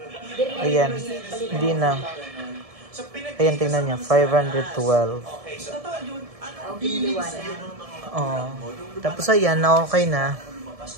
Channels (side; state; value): left; late; 1.7 ms